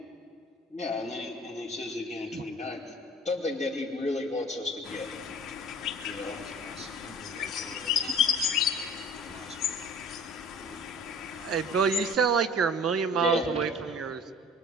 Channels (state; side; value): normal; both; correlation 0.43